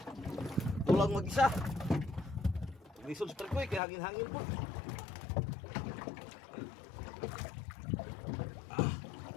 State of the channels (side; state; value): right; drops out; at 3.8 s